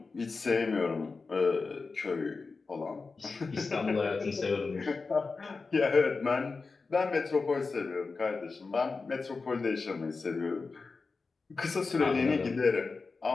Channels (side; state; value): right; quieter; 4.2 dB